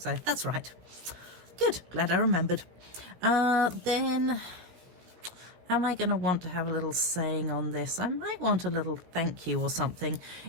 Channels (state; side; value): late; left; 17 ms